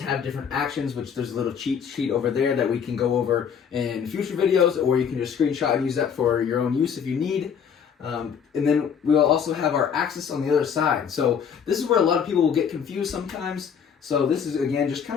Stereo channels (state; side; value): quieter; right; 7.3 dB